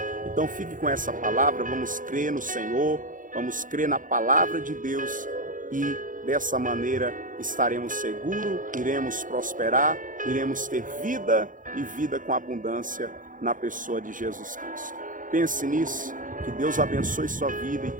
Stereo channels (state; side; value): late; left; 0.38 ms